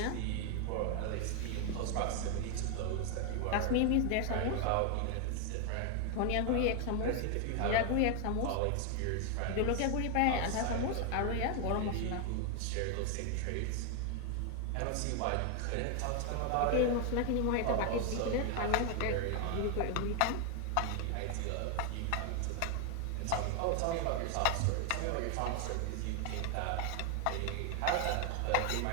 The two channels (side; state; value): both; different; correlation 0.00